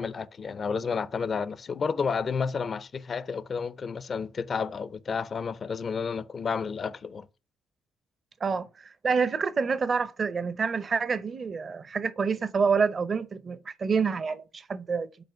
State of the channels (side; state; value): both; normal; correlation 0.83